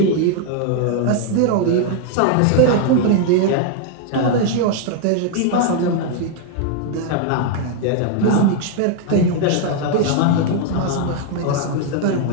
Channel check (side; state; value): both; different; correlation 0.00